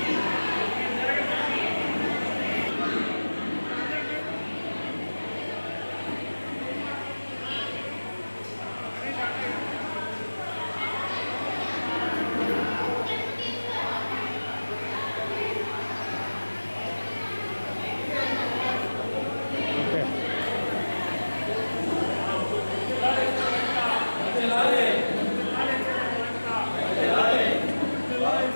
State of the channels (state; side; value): inverted; both; correlation -1.00